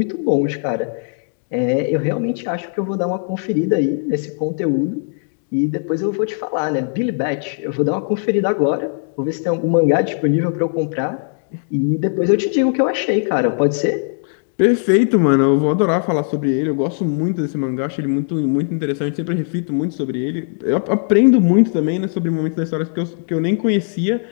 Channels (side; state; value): right; silent; 61 dB below the other